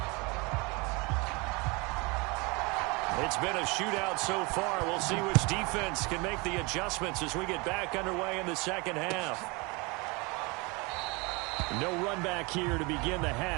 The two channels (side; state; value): left; quieter; 27.5 dB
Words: It's been a shootout so far. We'll see which defense can make the adjustments as we get back underway in the second half. No run back here to begin the